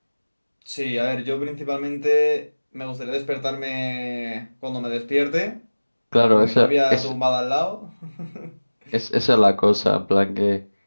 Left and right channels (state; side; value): inverted; both; correlation -1.00